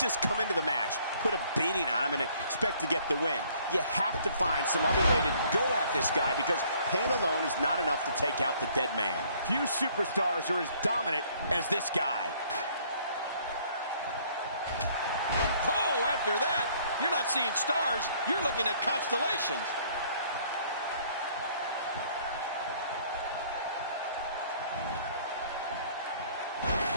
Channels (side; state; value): both; inverted; correlation -0.60